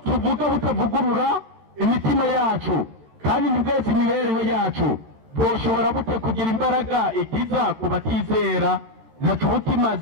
tuvuga butavugurura imitima yacu kandi nibweze imibereho yacu, boshobora bute kugira imbaraga ikiza ku batizera? Ntaco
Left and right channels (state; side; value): late; left; 13 ms